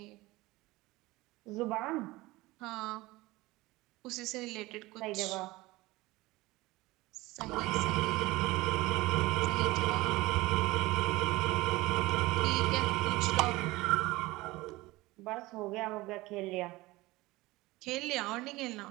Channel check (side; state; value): left; quieter; 20.2 dB